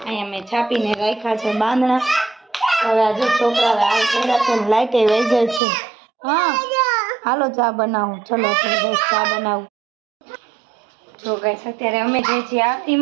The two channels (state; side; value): drops out; left; at 5.6 s